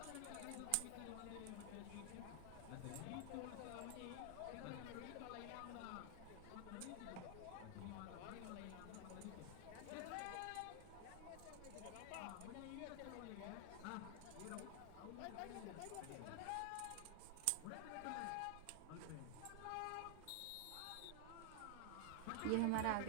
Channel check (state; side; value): different; both; correlation 0.00